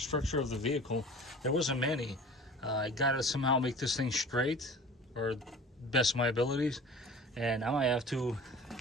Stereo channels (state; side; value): normal; both; correlation 0.42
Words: of the vehicle, there wasn't many. I gotta somehow make this thing straight, or best of my abilities, and I might have to,